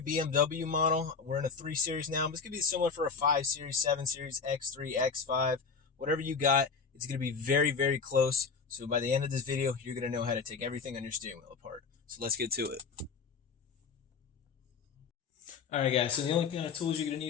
BMW model. We're in a 3 Series now, but it's going to be similar for a 5 Series, 7 Series, X3, X5, whatever you got. It's going to be very, very close. So by the end of this video, you're going to know how to take everything on your steering wheel apart. So let's get to it. Alright guys, so the only kind of tools you're going to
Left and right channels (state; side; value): quieter; right; 5.3 dB